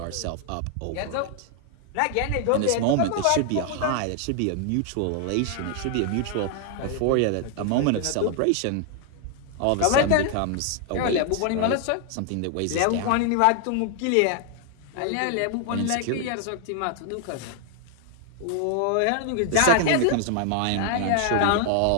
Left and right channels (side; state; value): both; different; correlation 0.00